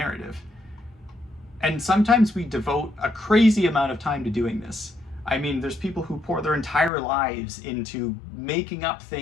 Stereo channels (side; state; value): right; drops out; at 6.9 s